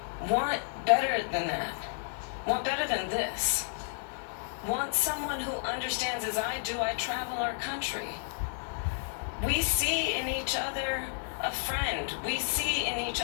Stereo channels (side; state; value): right; silent; digital silence